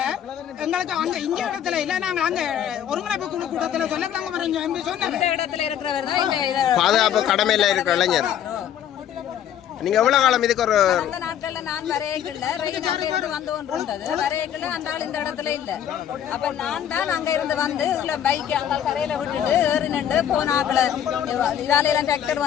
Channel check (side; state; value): right; quieter; 9.9 dB